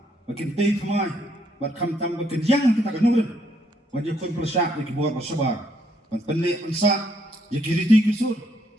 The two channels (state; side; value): normal; both; correlation 0.72